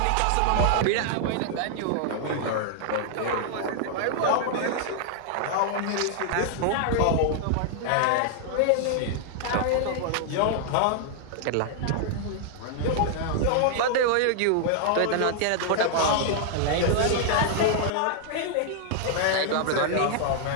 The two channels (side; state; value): both; different; correlation -0.01